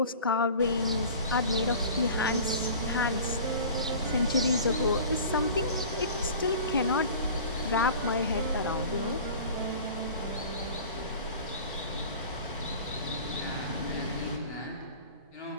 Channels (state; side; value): inverted; both; correlation -0.41